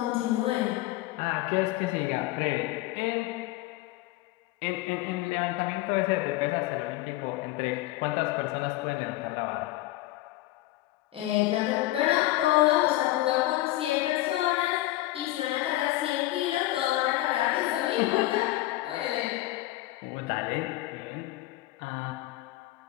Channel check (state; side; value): quieter; right; 17.0 dB